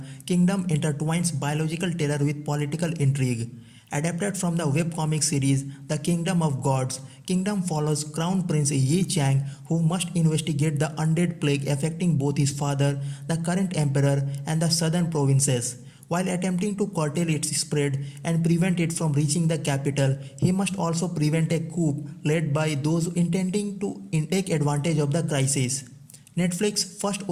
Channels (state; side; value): identical; both; correlation 1.00